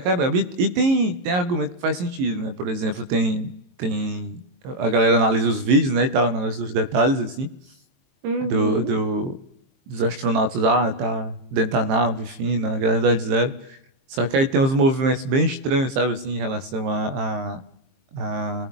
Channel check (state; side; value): late; left; 22 ms